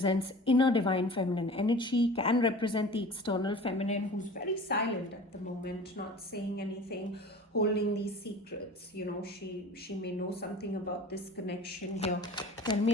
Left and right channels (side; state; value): both; normal; correlation 0.40